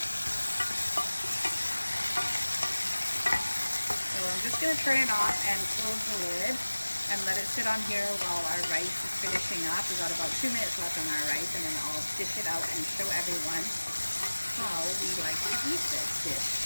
So I'm just going to turn it off and close the lid and let it sit on here while our rice is finishing up. We've got about 2 minutes left on our rice, and then I'll dish it out and show everyone how we like to eat this dish.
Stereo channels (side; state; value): both; inverted; correlation -1.00